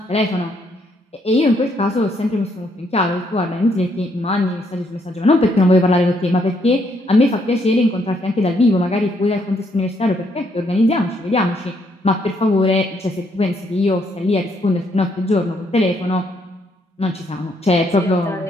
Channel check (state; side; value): normal; both; correlation 0.72